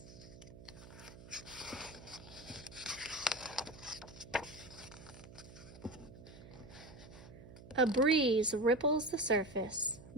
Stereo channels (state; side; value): noise; right; hum, 17 dB below the sound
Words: A breeze ripples the surface.